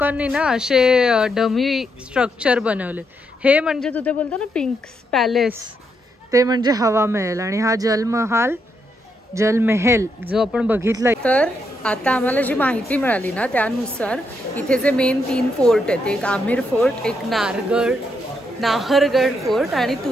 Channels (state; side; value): normal; both; correlation 0.79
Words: ना असे डमी स्ट्रक्चर बनवले। हे म्हणजे तू ते बोलतो ना पिंक पॅलेस, ते म्हणजे हवा महल आणि हा जलमहल जो आपण बघितला। तर आता आम्हाला जी माहिती मिळाली ना त्यानुसार इथे जे मेन 3 फोर्ट आहेत, एक आमिर फोर्ट, एक नाहरगड फोर्ट आणि